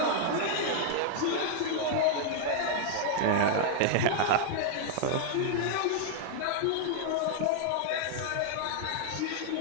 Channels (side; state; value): both; different; correlation -0.01